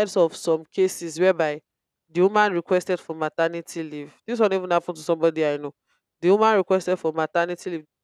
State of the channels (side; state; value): both; identical; correlation 1.00